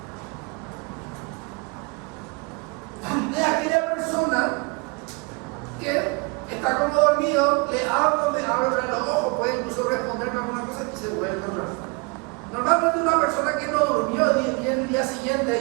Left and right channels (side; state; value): left; quieter; 30.9 dB